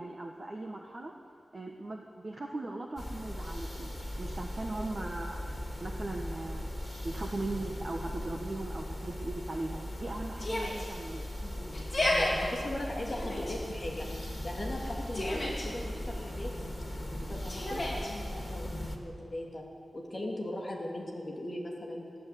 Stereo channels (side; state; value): both; normal; correlation 0.95